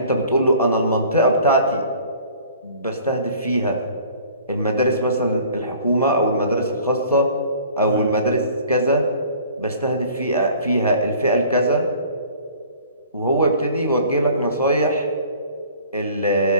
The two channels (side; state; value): both; inverted; correlation -0.50